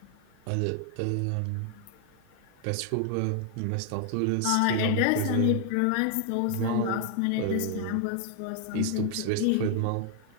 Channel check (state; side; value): different; both; correlation 0.00